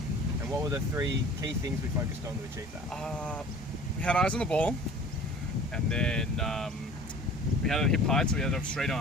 And what were the 3 key things we focused on to achieve that? We had eyes on the ball, and then we had it hip height, so we had to have straight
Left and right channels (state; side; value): normal; both; correlation 0.45